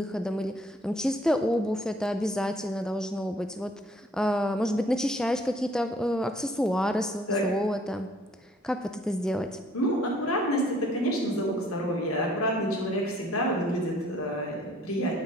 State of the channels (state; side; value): normal; both; correlation 0.60